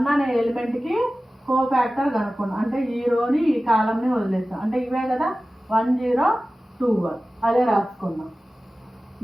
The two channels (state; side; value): normal; both; correlation 0.96